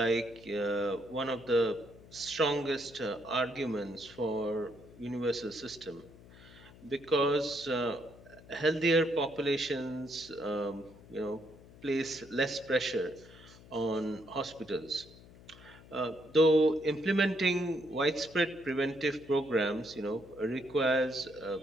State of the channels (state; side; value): noise; left; hum, 21 dB below the sound